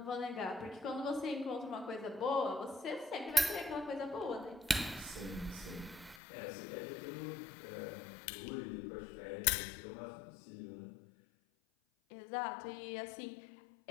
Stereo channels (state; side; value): drops out; right; at 6.2 s